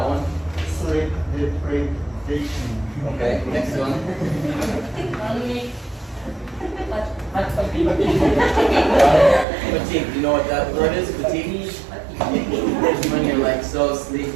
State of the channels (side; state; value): left; drops out; at 9.5 s